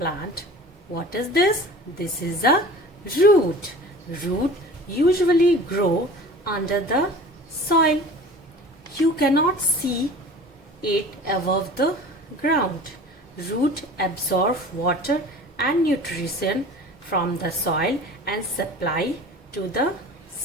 what is this? This is a root. Root usually grow under the soil. You cannot see it above the ground. Root absorb water and nutrition from the soil and supply to the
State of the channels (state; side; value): normal; both; correlation 0.41